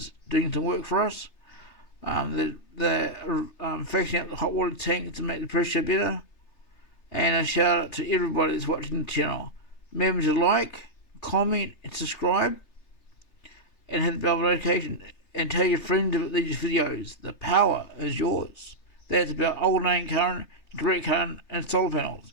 doing some work for us. They're fixing up the hot water tank to make the pressure better. And a shout out to everybody that's watching the channel. Remember to like, comment and subscribe, and hit the bell notification, and tell your friends about these videos. The power is yours. That's about alternating current, direct current, and solar panels.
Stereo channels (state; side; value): late; right; 3.3 ms